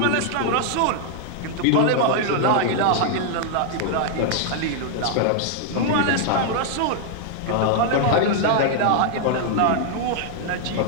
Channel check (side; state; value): both; different; correlation -0.01